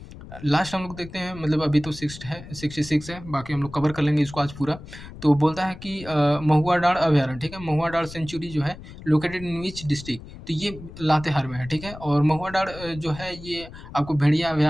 लास्ट हम लोग देखते हैं, मतलब अभी तो 66 है, बाकी हम लोग कवर कर लेंगे इसको आज पूरा। तो बोलता है कि महुआ डाँड़ अभयारण्य, ठीक है? महुआ डाँड़ सेंचुरी जो है लोकेटेड इन व्हिच डिस्ट्रिक्ट? तो ये लातेहार में है, ठीक है? और महुआ डाँड़ जो है ये आपको भेड़िया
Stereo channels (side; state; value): left; noise; rumble, 15 dB below the sound